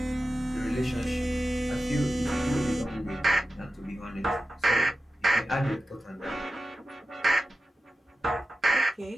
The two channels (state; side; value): normal; both; correlation 0.93